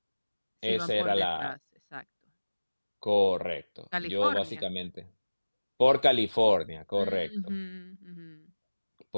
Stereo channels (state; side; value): inverted; both; correlation -1.00